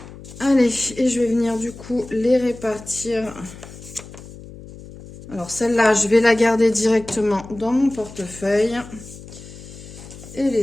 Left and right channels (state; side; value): noise; left; hum, 16 dB below the sound